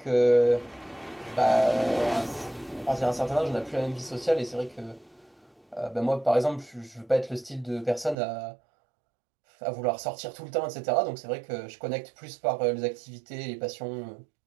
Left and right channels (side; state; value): left; drops out; at 8.2 s